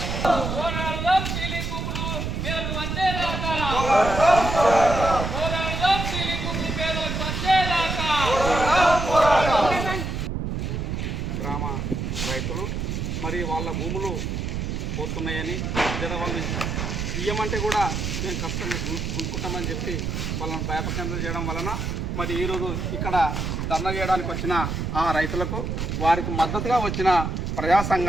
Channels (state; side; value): noise; right; rumble, 2 dB below the sound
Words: రైతులు మరి వాళ్ళ భూములు పోతున్నాయని లేదా వాళ్ళు ఇయ్యమంటే కూడా మేము కష్టంగా గుంజుకుంటామని చెప్పి వాళ్ళని భయపకేంద్రం చేయడం వలన మరి ఈరోజు ఇక్కడ ధర్నా చేయడానికి వచ్చిన ఆ రైతులకు వారికి మద్దతుగా వచ్చిన ప్రజా